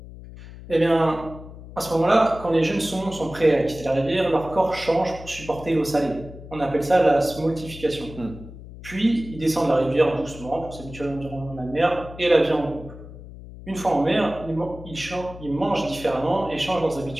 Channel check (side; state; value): left; noise; hum, 15 dB below the sound